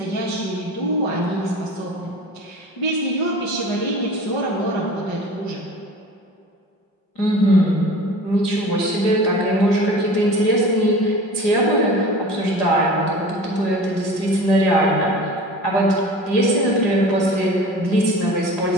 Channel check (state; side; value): late; right; 5.4 ms